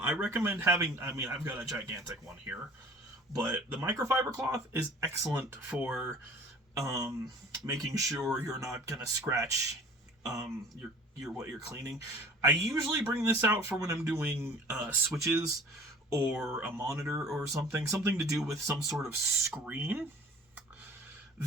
recommend having, I've got a gigantic one here, but the microfiber cloth is excellent for making sure you're not going to scratch what you're cleaning. I usually bring this out for when I'm doing switches or a monitor or something to do with some sort of screen.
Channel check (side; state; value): both; normal; correlation 0.47